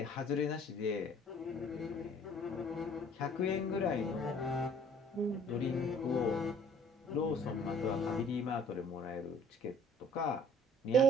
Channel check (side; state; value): both; normal; correlation 0.55